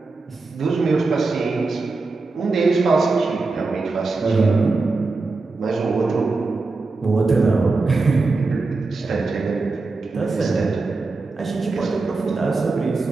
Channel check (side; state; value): left; quieter; 3.7 dB